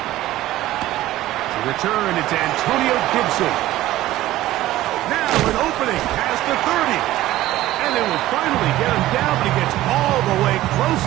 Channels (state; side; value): quieter; left; 15.5 dB